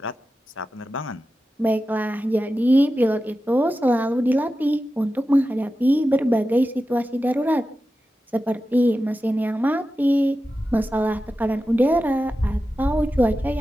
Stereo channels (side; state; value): both; normal; correlation 0.92